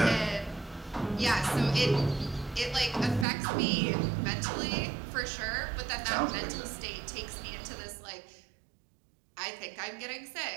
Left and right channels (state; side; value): drops out; left; at 3.2 s